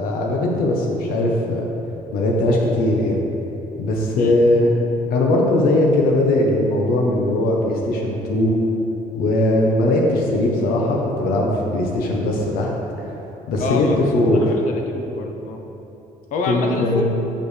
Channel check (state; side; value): normal; both; correlation 0.58